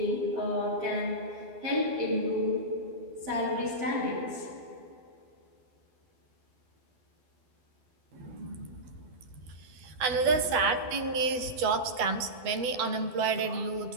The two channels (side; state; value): left; late; 12 ms